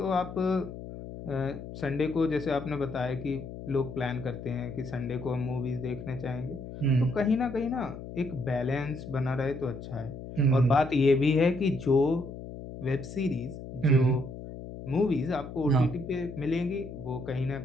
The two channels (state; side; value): noise; left; hum, 11 dB below the sound